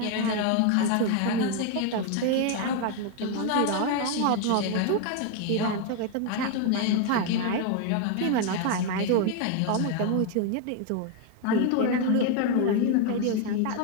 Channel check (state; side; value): different; both; correlation 0.01